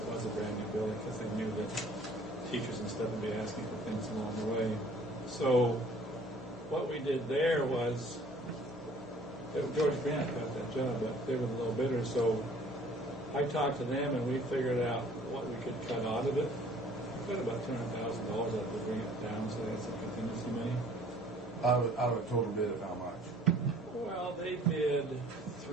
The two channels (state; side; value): normal; both; correlation 0.54